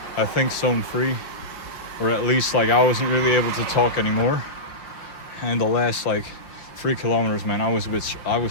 I think, zone 3, or at least like I wasn't really able to talk anymore. And the last like 3 kilometers, man, I was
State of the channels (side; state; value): right; late; 5.7 ms